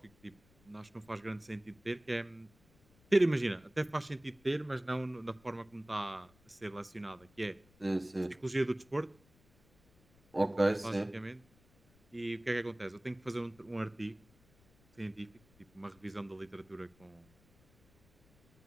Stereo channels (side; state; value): left; noise; rumble, 30 dB below the sound